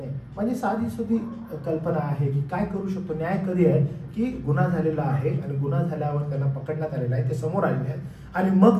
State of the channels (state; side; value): identical; both; correlation 1.00